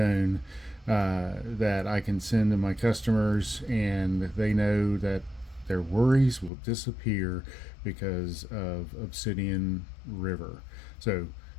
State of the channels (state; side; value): drops out; right; at 6.5 s